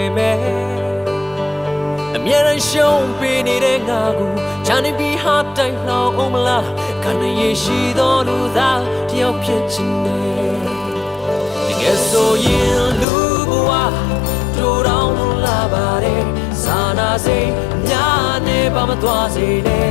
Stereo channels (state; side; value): drops out; right; at 13.1 s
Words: မဲ့အမြဲတမ်းရှုံးပေးနေတဲ့ငါကိုချမ်းနေပြီးဟာတိုင်းလောင်အောင်မလားခန္ဓာရရှိသောလူသားတယောက်ဖြစ်ချင်တယ်တကယ်ဆိုရင်လူဘဝတို့တောင်လာပါတယ်စာနာစိတ်များနေပါမသွားစေနဲ